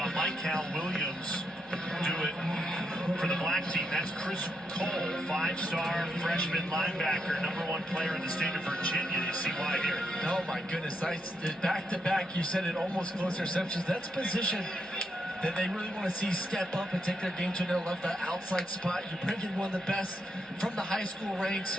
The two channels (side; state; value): both; normal; correlation 0.81